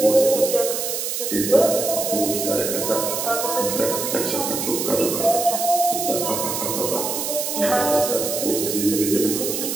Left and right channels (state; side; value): noise; right; hiss, 3 dB below the sound